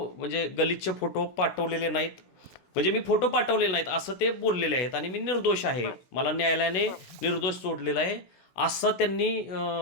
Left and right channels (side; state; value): right; late; 16 ms